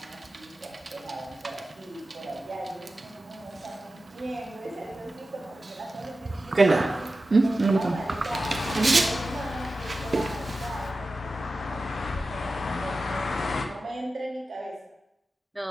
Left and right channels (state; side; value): normal; both; correlation 0.93